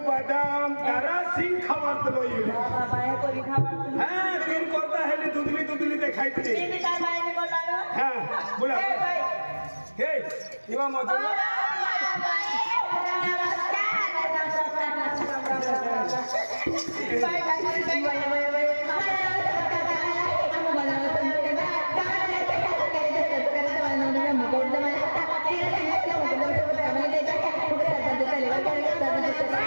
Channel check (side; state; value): both; inverted; correlation -1.00